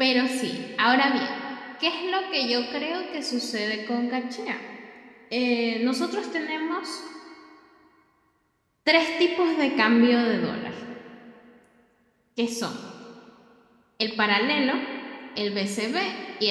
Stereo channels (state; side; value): identical; both; correlation 1.00